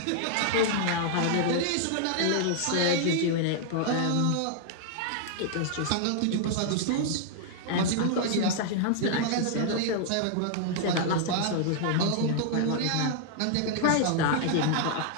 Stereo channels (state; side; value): different; both; correlation -0.01